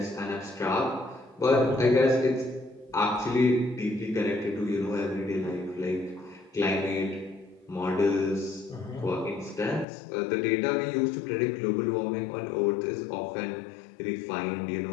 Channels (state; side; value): drops out; right; at 9.9 s